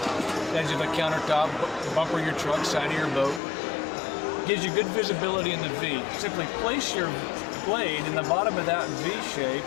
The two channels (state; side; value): drops out; right; at 3.4 s